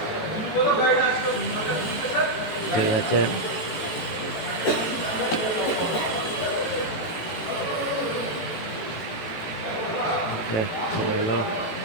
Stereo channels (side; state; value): right; late; 18 ms